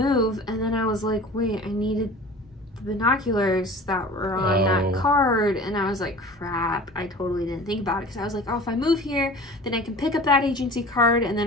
and then I was like, wait, I needed the binoculars that were on that card, and I was like, crap, I totally didn't think about it, because I was like, oh, if I move here, then I can pick up that agency card, and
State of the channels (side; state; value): both; normal; correlation 0.40